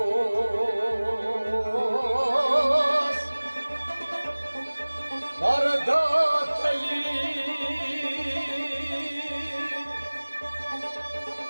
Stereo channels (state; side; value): inverted; both; correlation -1.00